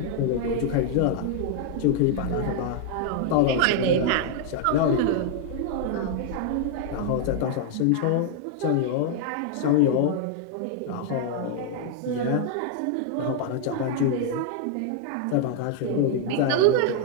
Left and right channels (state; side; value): different; both; correlation 0.00